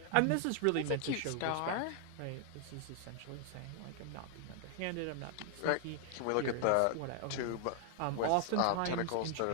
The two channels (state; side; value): different; both; correlation 0.00